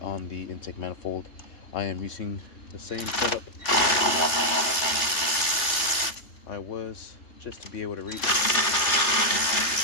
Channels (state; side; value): late; right; 3.3 ms